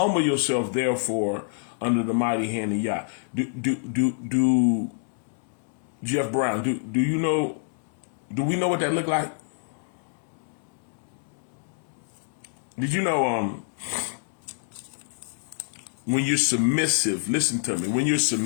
yourself, therefore, under the mighty hand of Yah. Do Jeff Brown, do you know, do we know what that look like? Did you know when you're submissive, listen to me, when you're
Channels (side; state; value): right; silent; digital silence